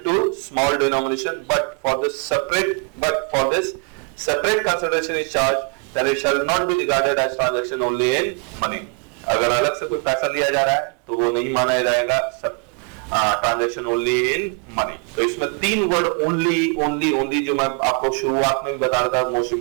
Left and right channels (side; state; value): left; quieter; 35.6 dB